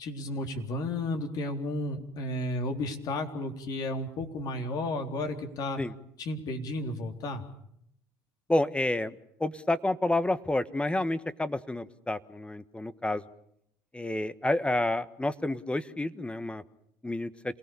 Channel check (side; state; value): both; normal; correlation 0.77